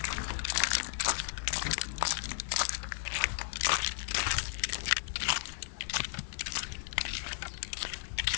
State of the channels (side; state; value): right; silent; digital silence